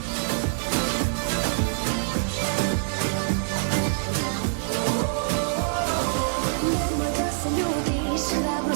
Nemoj da se ljutiš,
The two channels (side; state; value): left; silent; 61 dB below the other